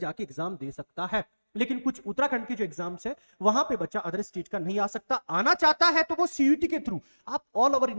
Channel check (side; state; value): both; inverted; correlation -1.00